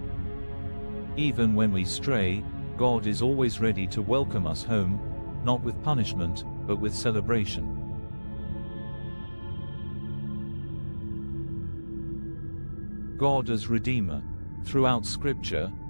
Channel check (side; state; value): both; inverted; correlation -1.00